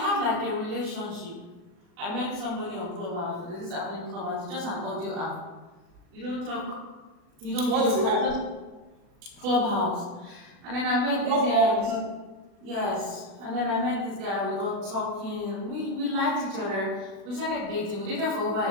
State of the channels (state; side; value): late; left; 40 ms